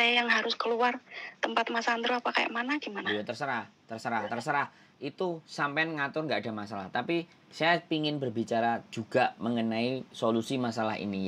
yang harus keluar tempat Mas Andro apa kayak mana gimana? Ya terserah. Itu sampean ngatur nggak ada masalah. Tapi saya ingin berbicara juga mengenai solusi masalah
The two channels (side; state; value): both; identical; correlation 1.00